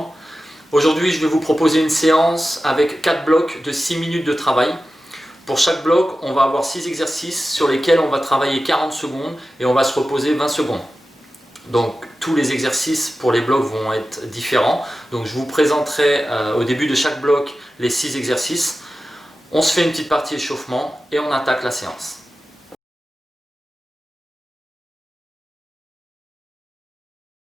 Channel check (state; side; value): normal; both; correlation 0.94